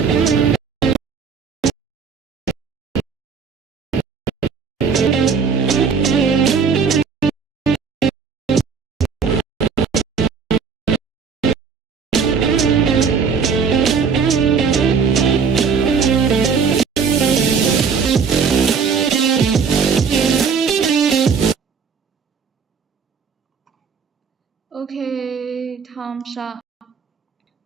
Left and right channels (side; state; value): left; quieter; 6.0 dB